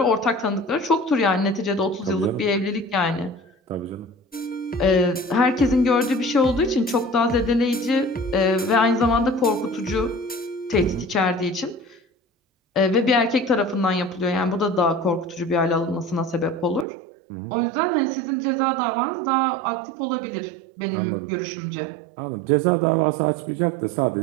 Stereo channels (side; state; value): left; drops out; at 16.9 s